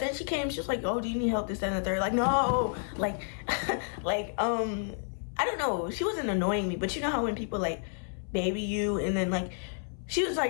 she came, she was like, oh, do you need help, this, that, and the third? Like, no, like, like, I don't know. She wasn't annoying me, but you know how when people like baby you, and then like, she was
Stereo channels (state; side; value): silent; right; 58 dB below the other